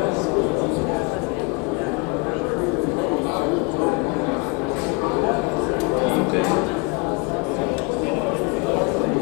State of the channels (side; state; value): right; quieter; 29.6 dB